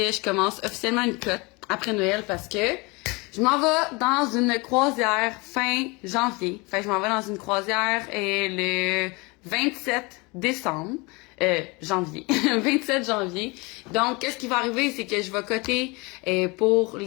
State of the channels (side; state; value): right; quieter; 26.8 dB